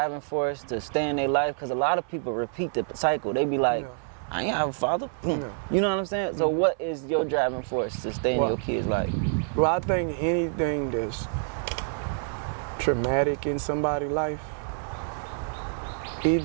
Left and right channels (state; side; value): silent; left; 60 dB below the other